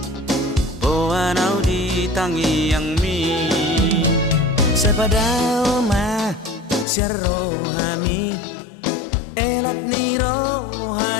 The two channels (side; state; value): right; drops out; at 6.9 s